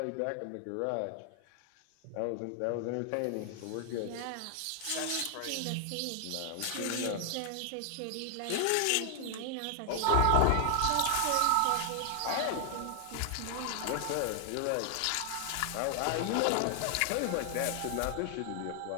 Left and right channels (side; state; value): both; different; correlation 0.00